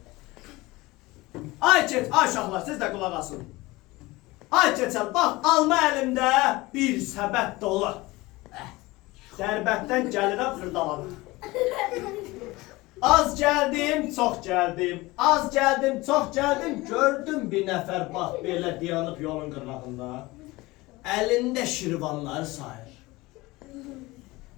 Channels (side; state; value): right; quieter; 21.0 dB